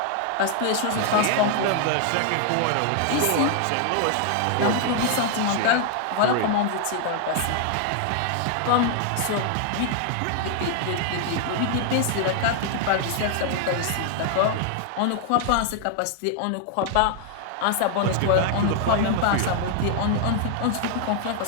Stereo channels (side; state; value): both; different; correlation 0.00